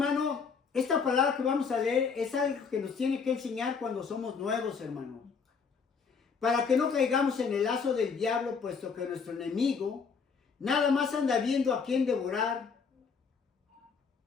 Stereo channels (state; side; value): quieter; right; 5.6 dB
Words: esta palabra que vamos a leer es algo que nos tiene que enseñar cuando somos nuevos, hermano. Para que no caigamos en el lazo del diablo, puesto que nuestro enemigo nada más anda viendo a quién devorar.